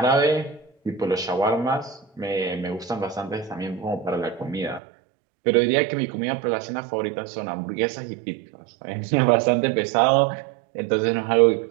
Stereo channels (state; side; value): drops out; left; at 4.8 s